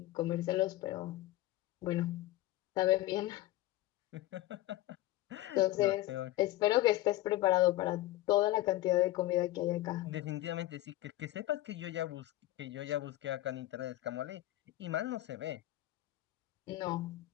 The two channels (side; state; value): right; quieter; 16.1 dB